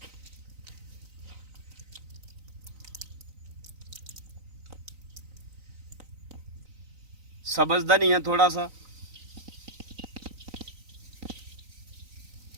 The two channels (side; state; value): left; late; 3.9 ms